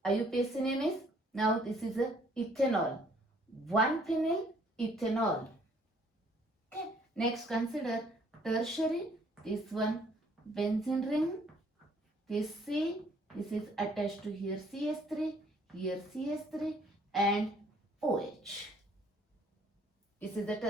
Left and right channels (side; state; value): both; normal; correlation 0.62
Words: IUPAC name is, now this is a ethanol, 1-phenyl ethanol. Okay, next consider tertiary. This one benzene ring, this C, this is attached to here CH3, here CH3 and OH. This is the